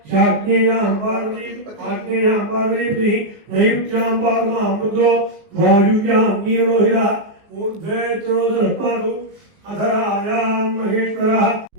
శాగ్నేయాం పార్వతీ ఆగ్నేయాం పార్వతీ నైరుత్యాం పాదమామృతో వాయువ్యాం నీరోహిరః ఊర్ధ్వే త్రోదపాదు అధరాయాం మహేశ్వరః.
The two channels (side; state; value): left; late; 19 ms